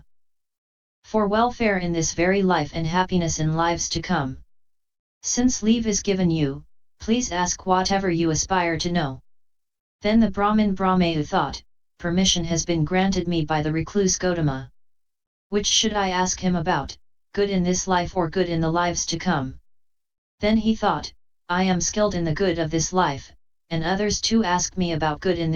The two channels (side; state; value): both; identical; correlation 1.00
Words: For welfare in this very life and happiness in lives to come. Since leave is given you, please ask whatever you aspire to know. Then the Brahman Brahmayu thought, permission has been granted me by the recluse Gotama. Which should I ask him about, good in this life or good in the lives to come? Then he thought, I am skilled in the good of this life, and others too ask me about good in